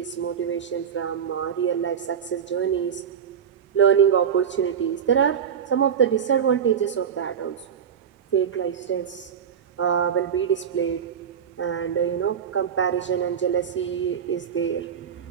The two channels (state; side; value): quieter; left; 7.9 dB